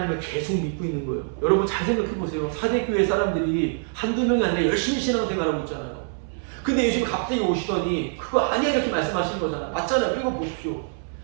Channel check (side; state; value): left; silent; 62 dB below the other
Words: 계속 믿고 있는 거예요. 여러분 잘 생각해 보세요. 사대교회 사람들이 한두 명이 아니라 열심히 신앙생활하고 있잖아요. 근데 예수님이 갑자기 오시더니 그거 아니야 이렇게 말씀하시는 거잖아요. 맞잖아요. 읽어보십시오.